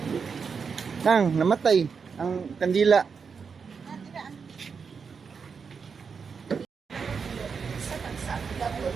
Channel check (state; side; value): quieter; left; 5.8 dB